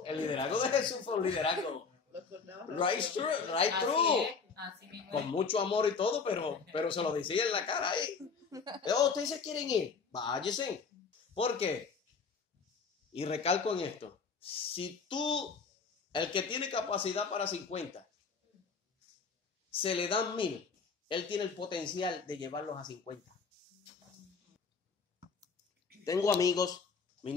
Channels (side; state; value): right; quieter; 5.2 dB